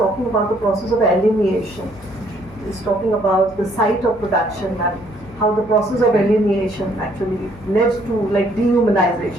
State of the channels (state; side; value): noise; left; hum, 21 dB below the sound